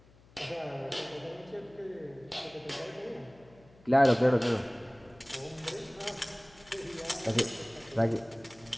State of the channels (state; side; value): noise; left; hum, 26 dB below the sound